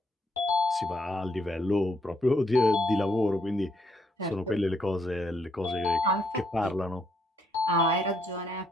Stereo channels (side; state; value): both; normal; correlation 0.73